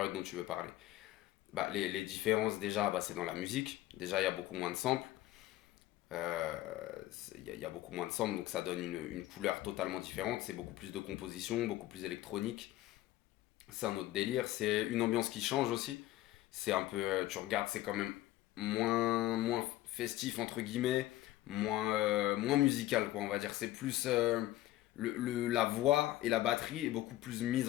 dont tu veux parler. Bah, les différences déjà, bah, c'est dans la musique. Déjà, il y a beaucoup moins de samples. Il y a beaucoup moins de samples, donc ça donne une couleur totalement différente. C'est beaucoup plus de composition, beaucoup plus électronique. C'est un autre délire. C'est une ambiance qui change aussi. C'est un peu, tu regardes, c'est quand même moins festif entre guillemets, moins musical quoi, on va dire. C'est plus la voix et la batterie est beaucoup plus mise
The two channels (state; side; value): quieter; right; 15.4 dB